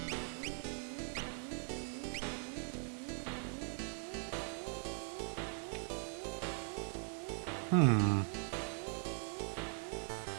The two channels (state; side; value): silent; left; 50 dB below the other